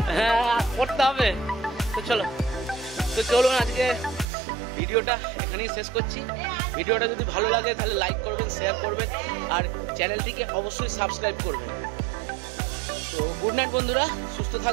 হ্যাঁ করতে হবে। তো চলুন আজকে ভিডিওটা এখানেই শেষ করছি। ভিডিওটা যদি ভালো লাগে তাহলে লাইক করবেন, শেয়ার করবেন, আর চ্যানেলটিকে অবশ্যই সাবস্ক্রাইব করবেন। তো গুড নাইট বন্ধুরা, সুস্থ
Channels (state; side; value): drops out; left; at 4.2 s